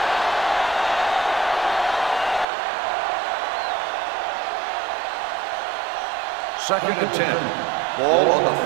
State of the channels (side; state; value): left; drops out; at 2.5 s